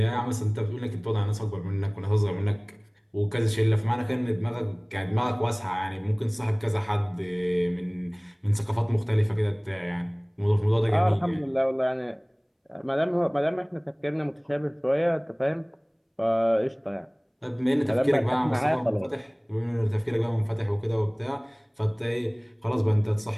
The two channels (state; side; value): identical; both; correlation 1.00